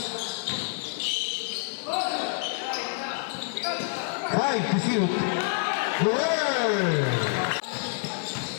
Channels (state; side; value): silent; right; digital silence